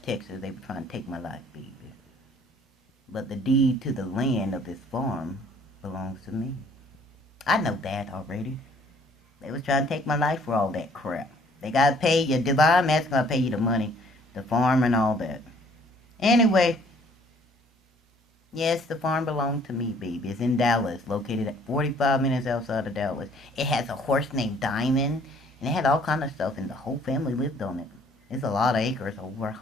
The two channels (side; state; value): both; normal; correlation 0.59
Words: Texas. They were trying to take my life, baby. But the deed to the land of this farm belongs to me. I know that already. They was trying to take my life for all that crap. They gotta pay you. Divine Master gotta pay you the money. The farm and all that. Anyway. Yes, the farm belonged to me, baby. It's in Dallas. Located at 45 minutes outside of Dallas. It has a horse named Diamond. And it had all kind of stuff. And the whole family lived on it. It's a lot of acres. Over